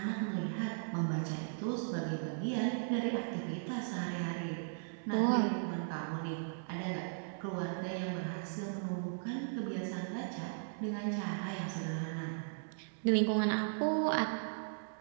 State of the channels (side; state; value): left; silent; digital silence